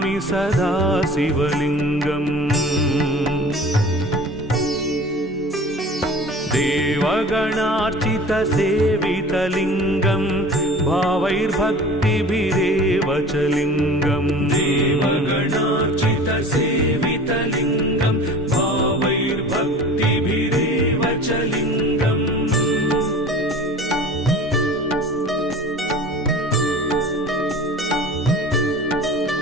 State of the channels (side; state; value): both; normal; correlation 0.41